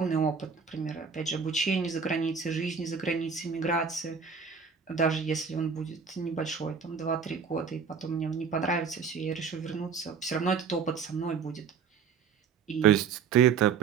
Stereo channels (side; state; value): left; quieter; 6.2 dB